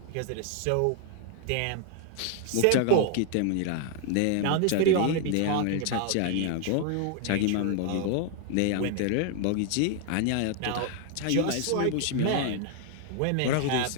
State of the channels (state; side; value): different; both; correlation 0.00